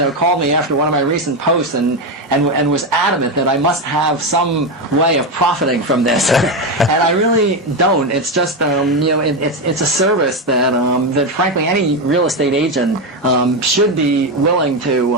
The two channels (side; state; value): both; normal; correlation 0.11